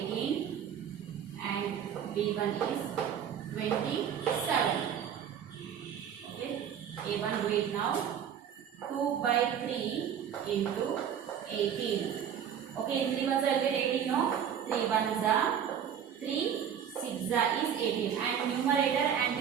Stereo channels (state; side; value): quieter; left; 8.6 dB